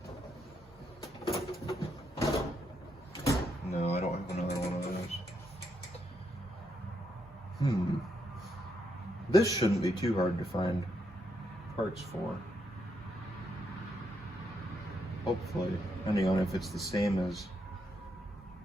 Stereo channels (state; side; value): normal; both; correlation 0.78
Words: No, I don't have another one of those. This shouldn't be too hard to find parts for. Hopefully, depending on if it's the same as